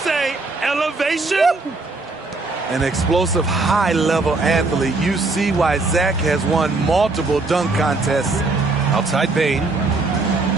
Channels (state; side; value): quieter; left; 3.5 dB